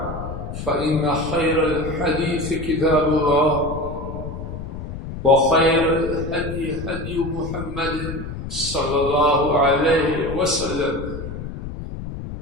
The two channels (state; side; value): noise; left; rumble, 8 dB below the sound